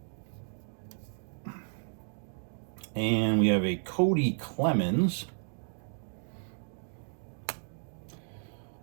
And we have a Cody Clemens.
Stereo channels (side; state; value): left; silent; digital silence